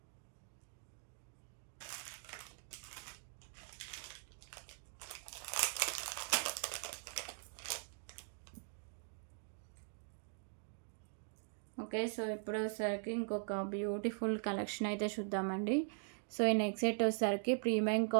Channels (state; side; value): silent; left; digital silence